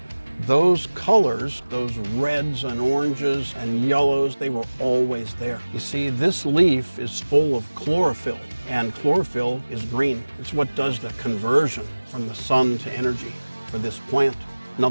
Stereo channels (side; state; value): both; inverted; correlation -1.00